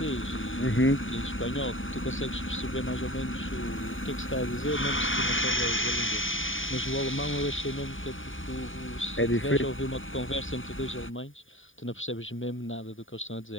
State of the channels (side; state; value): right; late; 0.57 ms